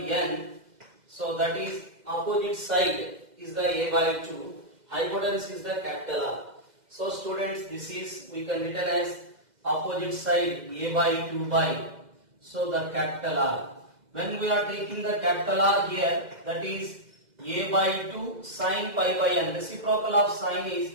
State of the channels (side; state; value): left; late; 2.0 ms